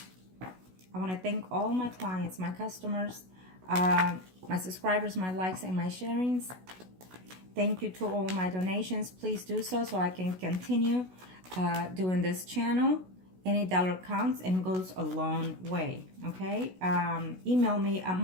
I want to thank all my clients, my customers, my subscribers, my likes, and my sharings. Thank you to all my donations. Please do so I can continue doing this channel. Any dollar counts and goes a long way, okay? Email me at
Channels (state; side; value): late; left; 16 ms